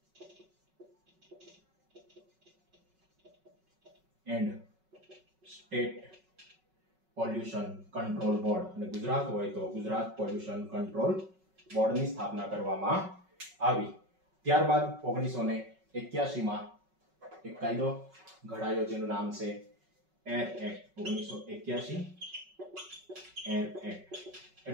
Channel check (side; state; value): left; late; 5.3 ms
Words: And state pollution control board. અને ગુજરાત હોય તો ગુજરાત પોલ્યુશન કંટ્રોલ બોર્ડની સ્થાપના કરવામાં આવી. ત્યારબાદ 1981માં એક કાયદો ઘડાયો જેનું નામ છે એર એક્ટ. 1981 એર એક્ટ